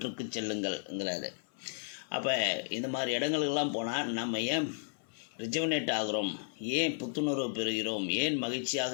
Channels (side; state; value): right; silent; 55 dB below the other